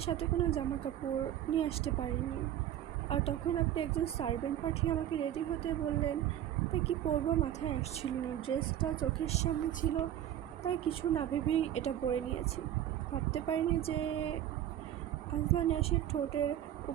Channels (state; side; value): quieter; left; 11.5 dB